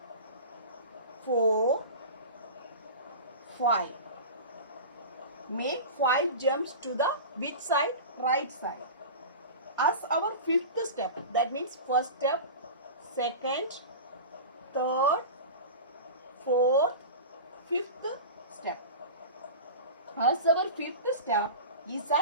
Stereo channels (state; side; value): inverted; both; correlation -0.30